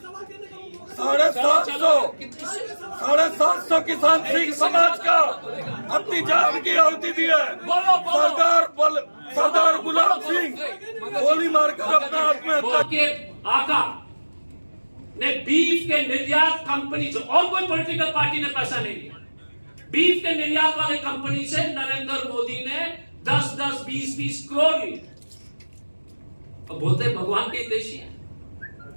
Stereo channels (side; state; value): both; inverted; correlation -1.00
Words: 750 किसान सिख समाज का अपनी जान की आहुति दी है। सरदार गुलाब सिंह गोली मारकर अपना आत्महत्या के आका ने बीफ के निर्यात कंपनी से, और कोई पॉलिटिकल पार्टी ने पैसा नहीं लिया, बीफ के निर्यात वाले कंपनी से नरेंद्र मोदी ने 10-10, 20-20 करोड़ लिए। और बोलते भगवान के देशी हैं,